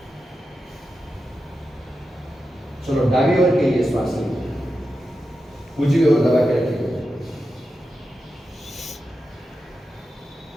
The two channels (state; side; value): normal; both; correlation 0.90